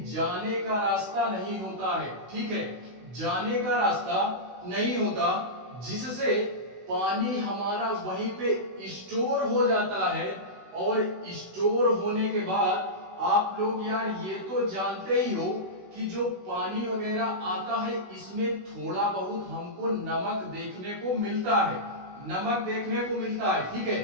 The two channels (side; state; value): left; late; 16 ms